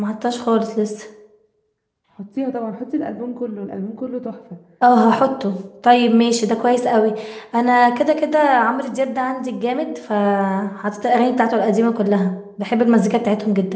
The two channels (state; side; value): identical; both; correlation 1.00